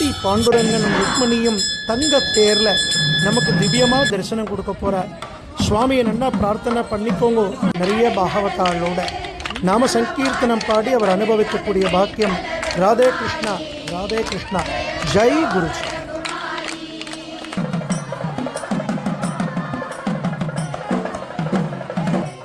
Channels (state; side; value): identical; both; correlation 1.00